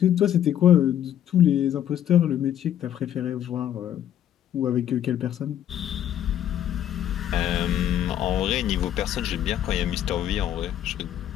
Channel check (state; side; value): quieter; right; 10.8 dB